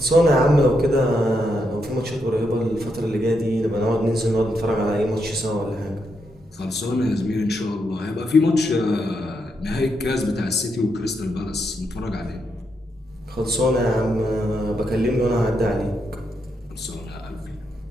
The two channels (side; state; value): both; normal; correlation 0.81